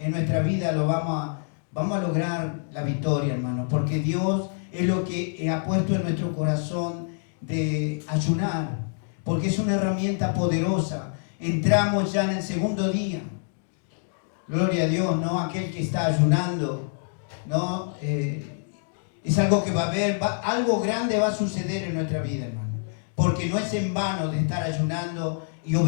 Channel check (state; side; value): silent; right; digital silence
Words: nuestra vida, vamos a lograr la victoria, hermano, porque Dios es lo que ha puesto en nuestro corazón de ayunar, porque es una herramienta poderosa. Entramos ya en el segundo día. Gloria a Dios, ¿no? Aquel que está ayunando, ¿no? Es algo que va a haber, algo grande va a suceder en nuestra vida, hermano. Porque no es en vano de estar ayunando y